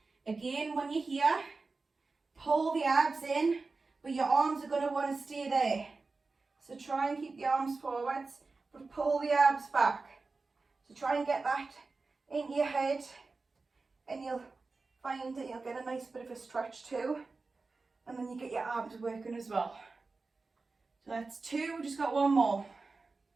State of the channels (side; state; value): left; quieter; 3.9 dB